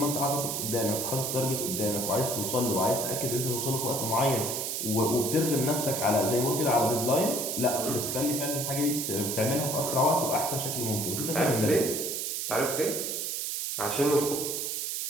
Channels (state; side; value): noise; right; hiss, 2 dB below the sound